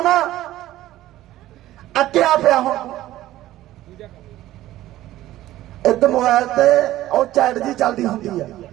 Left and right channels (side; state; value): left; quieter; 14.9 dB